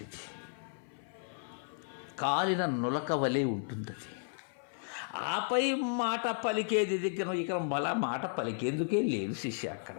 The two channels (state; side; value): silent; right; 55 dB below the other